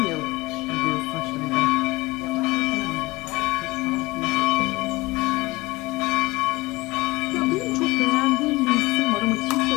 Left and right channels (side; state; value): right; quieter; 21.6 dB